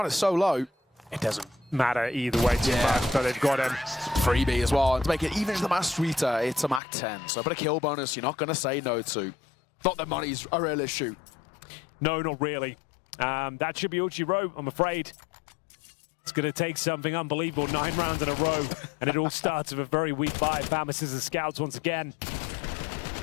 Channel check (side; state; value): right; drops out; at 6.8 s